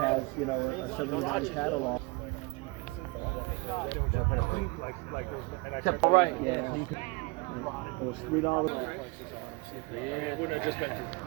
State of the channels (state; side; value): quieter; left; 27.0 dB